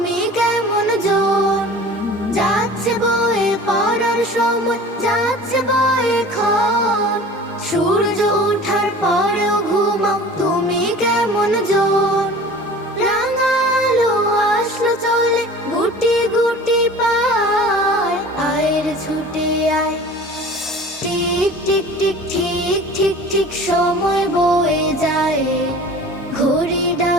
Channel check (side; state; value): both; normal; correlation 0.42